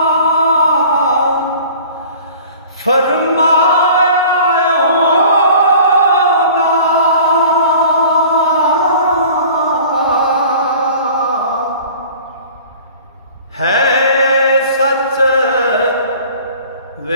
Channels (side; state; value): both; inverted; correlation -0.45